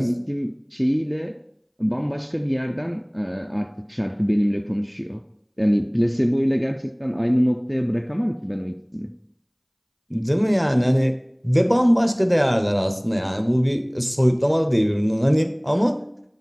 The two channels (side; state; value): both; identical; correlation 1.00